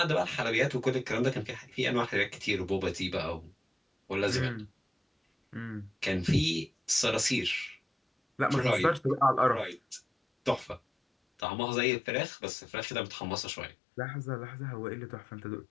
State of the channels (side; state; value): right; drops out; at 11.4 s